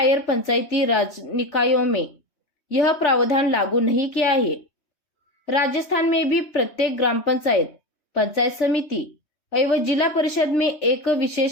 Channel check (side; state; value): right; late; 3.4 ms